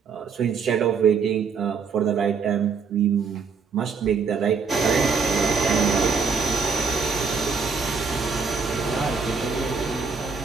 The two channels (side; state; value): left; quieter; 5.4 dB